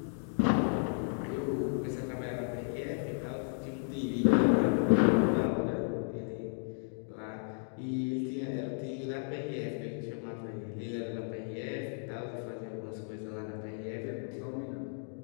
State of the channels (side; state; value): right; silent; 55 dB below the other